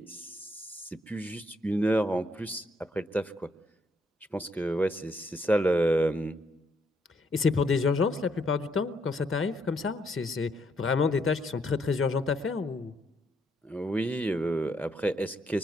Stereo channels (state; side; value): normal; both; correlation 0.73